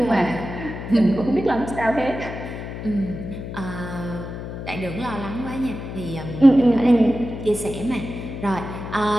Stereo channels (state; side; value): noise; left; hum, 8 dB below the sound